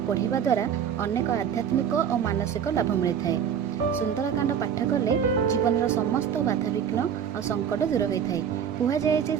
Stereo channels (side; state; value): left; quieter; 8.1 dB